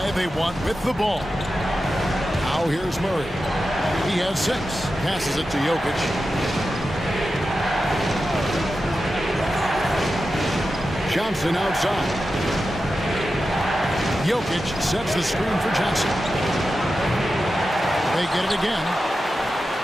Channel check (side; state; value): both; normal; correlation 0.91